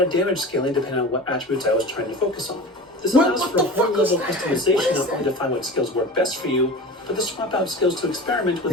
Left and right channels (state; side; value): normal; both; correlation 0.35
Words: damage scaling depending on what attributes I was trying to focus on. This allows for a whole level of customization, not only to find what skills work best for you, but to swap out skills to experiment with